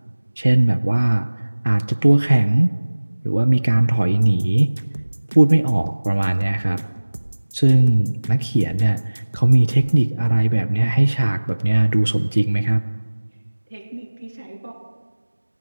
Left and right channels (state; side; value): inverted; both; correlation -1.00